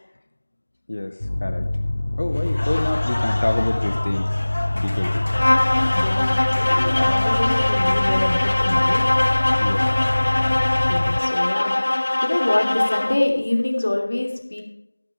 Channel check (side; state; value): both; inverted; correlation -1.00